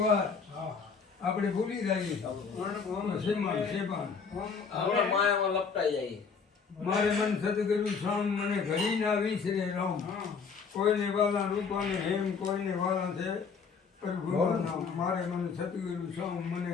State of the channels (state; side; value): quieter; right; 5.6 dB